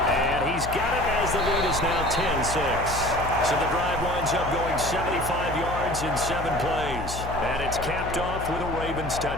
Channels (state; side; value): noise; left; hum, 8 dB below the sound